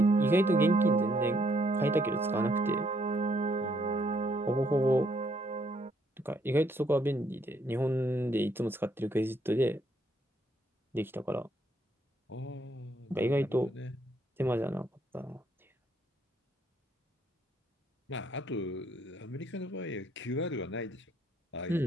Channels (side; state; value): both; normal; correlation 0.70